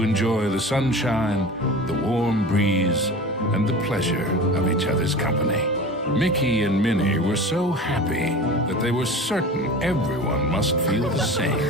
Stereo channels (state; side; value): normal; both; correlation 0.35